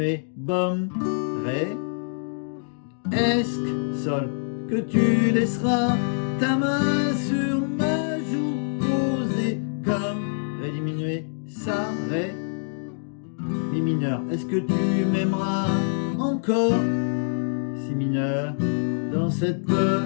bom, ré. Est-ce que, sol, que tu laisseras ta main sur ma joue posée comme ré diminué, ça, ré, mi mineur. Est-ce que tu m'aimeras encore, si mineur, dans cette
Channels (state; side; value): silent; right; digital silence